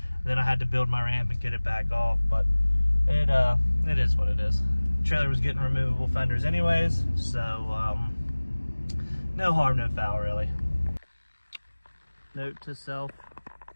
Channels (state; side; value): inverted; both; correlation -1.00